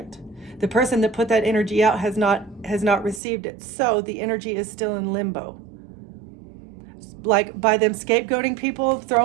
The person that put that energy out has not received it. So the energy is still in limbo. Like by them scapegoating people,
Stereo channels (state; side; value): drops out; left; at 3.2 s